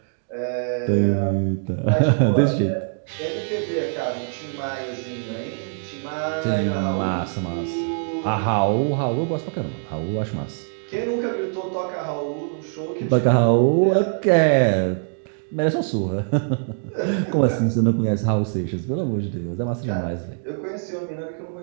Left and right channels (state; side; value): silent; left; digital silence